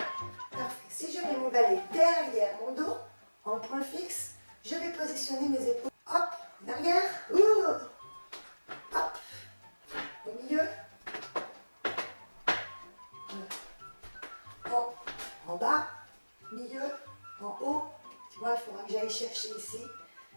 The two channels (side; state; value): both; inverted; correlation -1.00